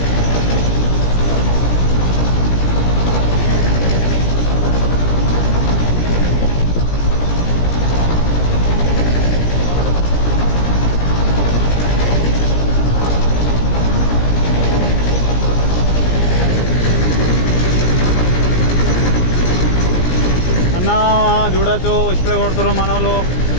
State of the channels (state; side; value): late; right; 17 ms